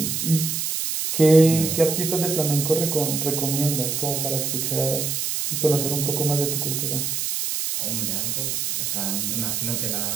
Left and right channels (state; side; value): noise; right; hiss, 1 dB below the sound